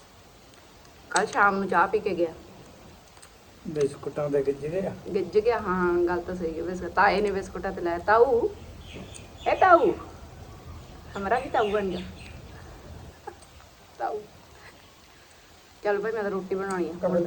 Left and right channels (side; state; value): both; identical; correlation 1.00